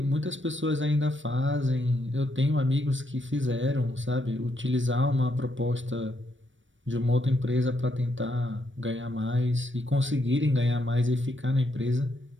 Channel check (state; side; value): late; left; 0.56 ms